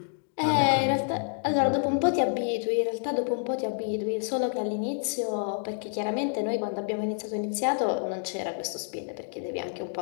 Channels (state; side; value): silent; right; digital silence